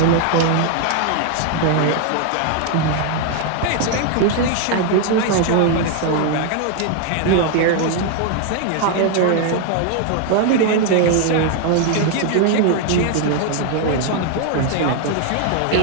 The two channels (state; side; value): different; both; correlation 0.00